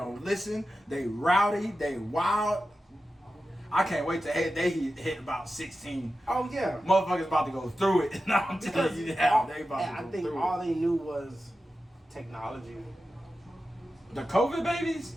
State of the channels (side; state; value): both; normal; correlation 0.92